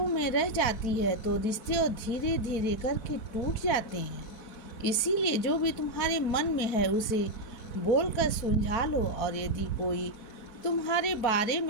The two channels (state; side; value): late; right; 4.1 ms